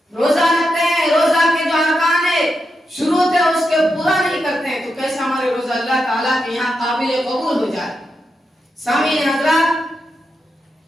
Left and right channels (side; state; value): both; normal; correlation 0.86